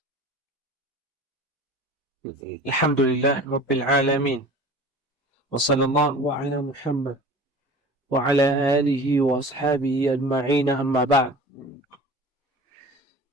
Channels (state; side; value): normal; both; correlation 0.41